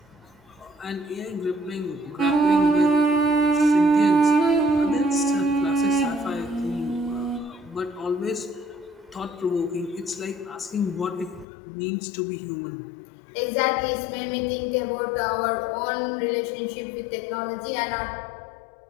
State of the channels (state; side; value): drops out; right; at 11.5 s